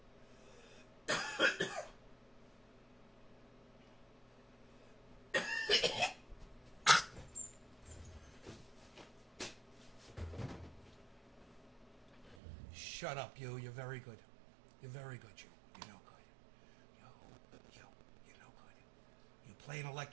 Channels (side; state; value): left; drops out; at 12.4 s